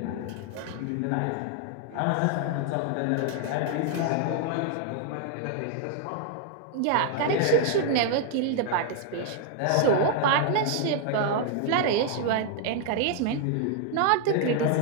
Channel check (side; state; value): both; different; correlation 0.00